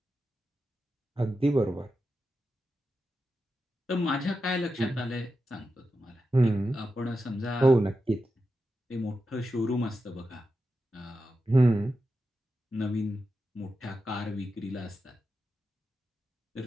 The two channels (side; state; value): both; normal; correlation 0.89